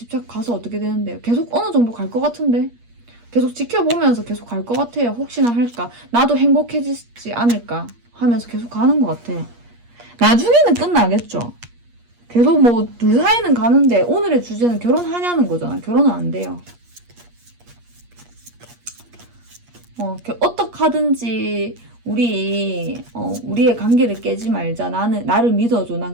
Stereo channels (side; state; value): left; late; 8.5 ms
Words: 가서 어떻게 되는데요? 계속 어느 정도 갈 것 같은데? 계속 지켜보면서 계속 갈 것 같아요. 혹시나 할까? 나도 행복해지지 않을까? 하면서 계속 가는 것 같아. 나중에는 끝나겠죠? 계속 뭐 둘 사이는 가는데 오늘의 주제는 결혼하냐는 거잖아. 결혼은 안 돼요. 어떻게 하든지 우리의 관계를 깨지 말자. 나를 믿어줘. 난